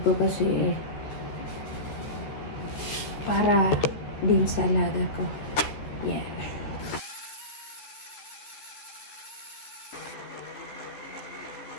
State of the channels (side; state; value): right; late; 14 ms